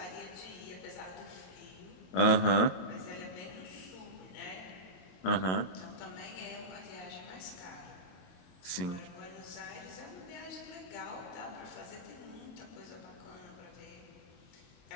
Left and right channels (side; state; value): right; late; 22 ms